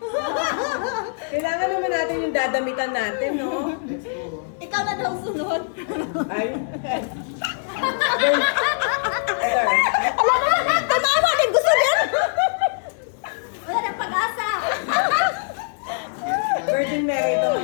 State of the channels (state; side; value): silent; right; 64 dB below the other